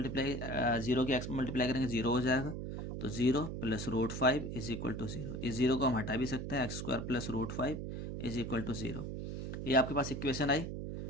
0 के x में मल्टीप्लाई करेंगे 0 हो जाएगा, तो 0 + √5 = 0। इस 0 को हम हटा भी सकते हैं, x² + √5 = 0। ये आपके पास इक्वेशन आई।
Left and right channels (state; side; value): noise; right; hum, 5 dB below the sound